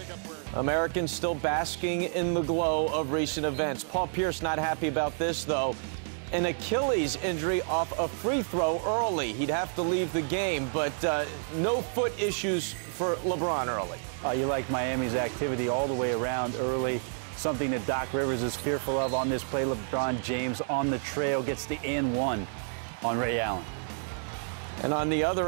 Americans still basking in the glow of recent events. Paul Pierce not happy about this, though. An Achilles injury off a free throw early. He'd have to leave the game, but no foot issues for LeBron early. You like Miami's activity all the way around early. Something that Doc Rivers is fearful of on this play. LeBron James on the trail gets the and one on Ray Allen. And on the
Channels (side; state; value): left; silent; digital silence